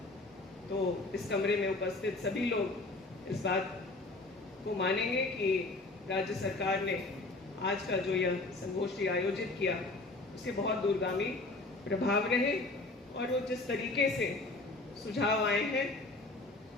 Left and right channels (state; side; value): quieter; right; 3.1 dB